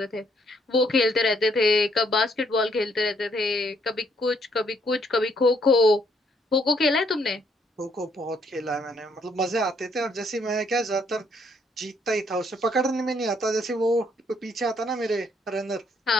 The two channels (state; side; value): normal; both; correlation 0.69